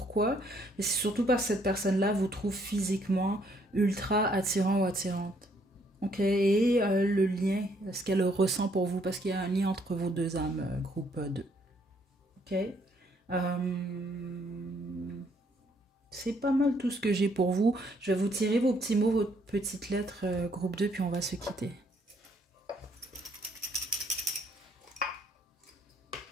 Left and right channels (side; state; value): both; normal; correlation 0.68